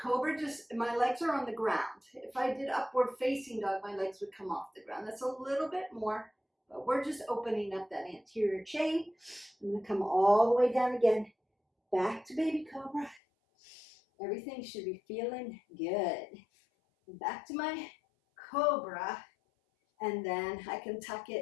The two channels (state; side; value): drops out; right; at 13.2 s